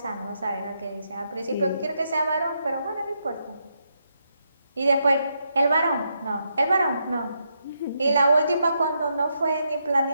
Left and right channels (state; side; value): inverted; both; correlation -0.80